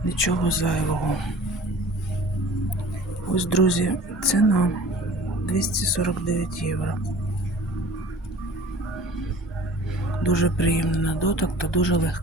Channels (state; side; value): normal; both; correlation 0.45